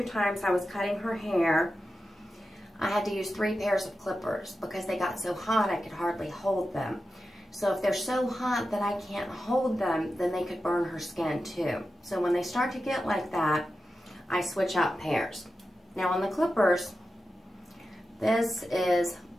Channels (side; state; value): both; normal; correlation 0.91